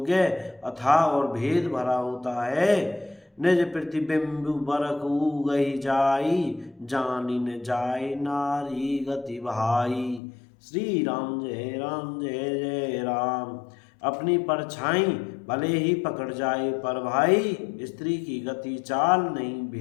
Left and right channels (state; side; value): drops out; right; at 10.2 s